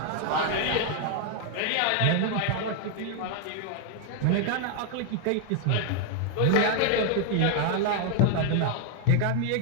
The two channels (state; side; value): different; both; correlation 0.00